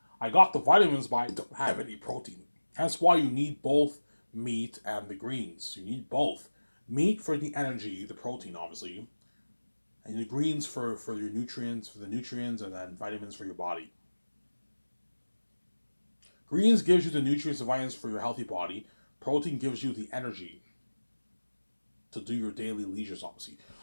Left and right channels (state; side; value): inverted; both; correlation -1.00